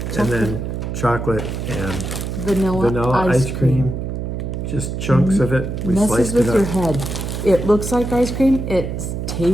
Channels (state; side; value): noise; right; hum, 4 dB below the sound